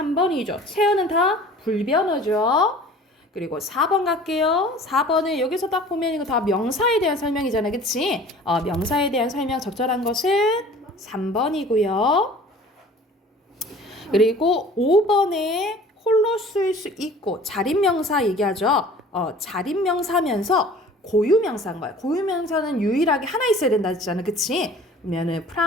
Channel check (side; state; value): both; normal; correlation 0.46